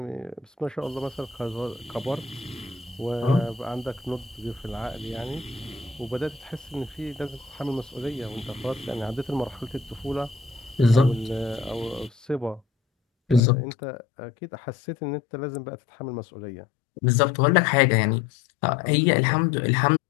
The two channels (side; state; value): right; drops out; at 13.4 s